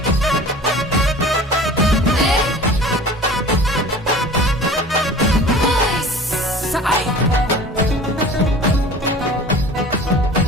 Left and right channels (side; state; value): both; normal; correlation 0.42